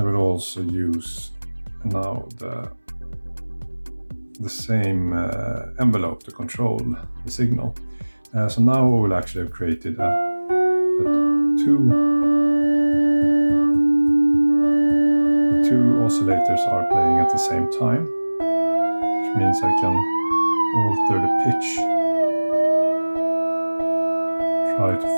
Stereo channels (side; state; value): both; inverted; correlation -1.00